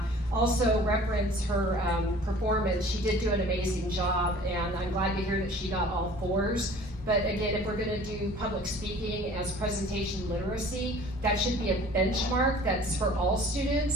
Also reference her performance. She did do an amazing job, and I'm glad to hear that she got all 4s. But again, if we're gonna do public speaking as presentation literacy, that should be a benchmark that's for all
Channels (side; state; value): both; normal; correlation 0.47